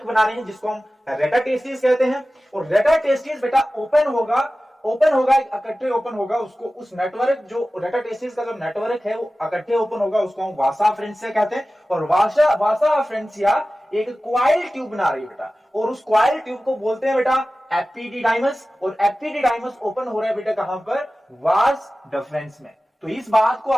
बना रहे हैं जिसको हम रेटा टेस्टिस कहते हैं। और रेटा टेस्टिस बेटा ओपन होगा, इकट्ठे ओपन होगा, उसको उस नेटवर्क जो रेटा टेस्टिस का जो नेटवर्क है वो इकट्ठे ओपन होगा, उसको हम वासा अफ्रेंशिया कहते हैं। और वासा अफ्रेंशिया एक क्वाइल ट्यूब बना रही है बेटा, और उस क्वाइल ट्यूब को बोलते हैं बेटा एपिडिडाइमस। और एपिडिडाइमस ओपन हो रहा है बेटा कहां पर, वास डिफरेंस में। तो इस बात को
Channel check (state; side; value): normal; both; correlation 0.96